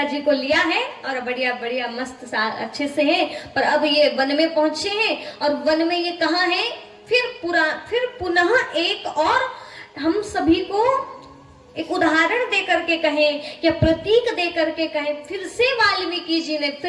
जी को लिया है और बढ़िया बढ़िया मस्त अच्छे से है, पर अब ये वन में पहुंचे हैं। और वन में ये कहाँ है? फिर पुनः एक और हम सभी को एक उदाहरण दे करके कहें या प्रतीक दे करके कहें, फिर से वाल्मीकि जी ने,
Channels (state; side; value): identical; both; correlation 1.00